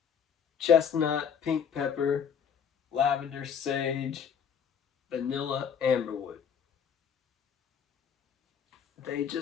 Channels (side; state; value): right; quieter; 7.5 dB